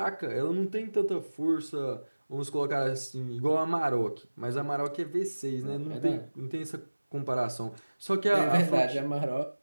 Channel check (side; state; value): both; inverted; correlation -1.00